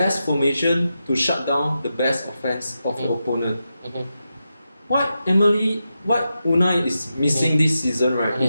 formation to shut down the best offense of the opponent. What Unai is missing this season, right,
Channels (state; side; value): inverted; both; correlation -0.89